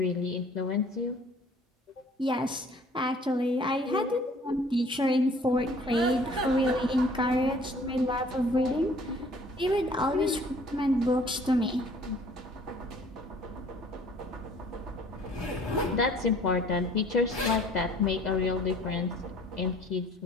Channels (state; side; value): normal; both; correlation 0.54